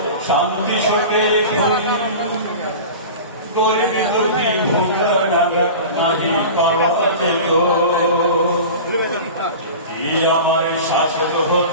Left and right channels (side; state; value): both; inverted; correlation -0.34